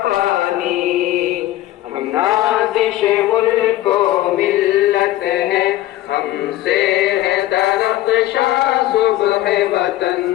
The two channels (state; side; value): quieter; right; 15.2 dB